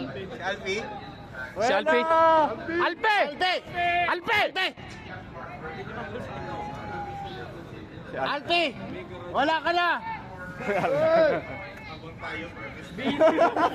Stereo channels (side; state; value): both; identical; correlation 1.00